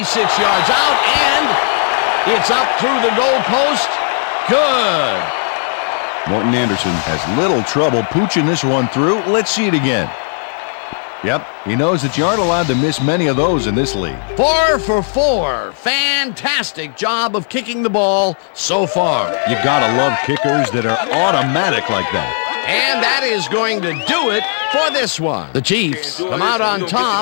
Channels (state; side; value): silent; right; digital silence